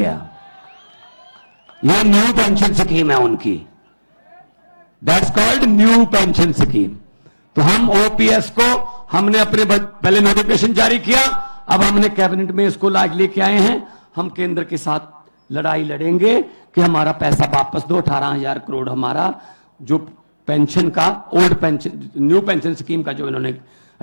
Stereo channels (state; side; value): inverted; both; correlation -1.00